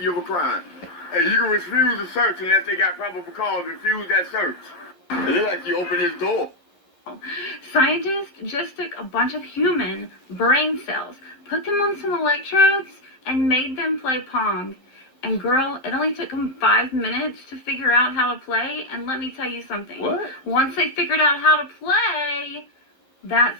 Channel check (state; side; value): late; right; 11 ms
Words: you of a crime. Hey, you can refuse a search unless they got probable cause. Refuse that search. It looks like you opened this door. Scientists just took a bunch of human brain cells, put them on some electrodes, and made them play Pong. And girl, it only took them 5 minutes to figure out how to play, and let me tell you something. What? Once they figured out how to play,